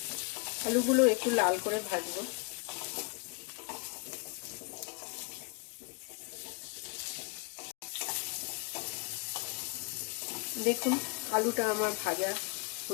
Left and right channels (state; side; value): quieter; right; 31.8 dB